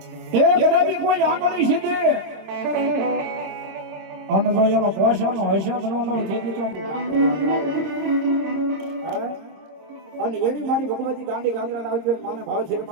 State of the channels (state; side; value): late; left; 26 ms